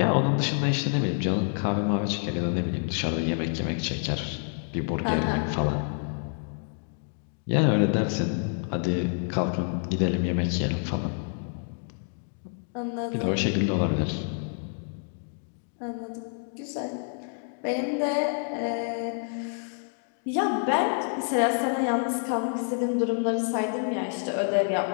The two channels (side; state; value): right; silent; 59 dB below the other